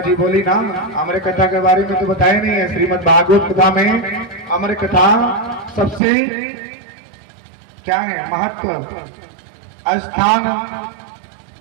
बोली ना, अमर कथा के बारे में तो बताया नहीं है। श्रीमद् भागवत कथा में अमर कथा सबसे क्या है महत्व स्थान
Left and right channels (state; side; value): drops out; left; at 6.0 s